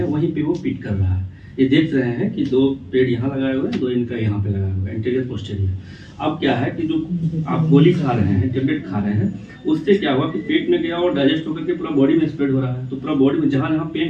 वहीं पे वो पिट कर रहा है। ये देख रहे हैं कि 2 पेड़ यहाँ लगाए हुए हैं, 2 इनका यहाँ पे लगाया हुआ है, इंटीरियर पोस्टीरियर। अब क्या है कि जो आप गोली खा रहे हैं, टेबलेट खा रहे हैं, उससे क्या हुआ कि पेट में गया और डाइजेस्ट होकर के पूरा बॉडी में स्प्रेड हो रहा है। तो पूरा बॉडी में जहाँ जहाँ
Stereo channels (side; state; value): both; identical; correlation 1.00